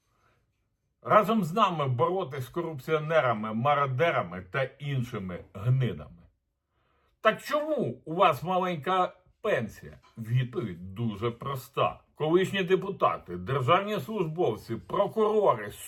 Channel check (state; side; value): identical; both; correlation 1.00